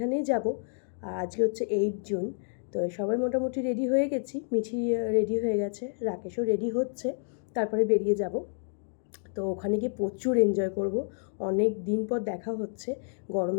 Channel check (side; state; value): right; silent; digital silence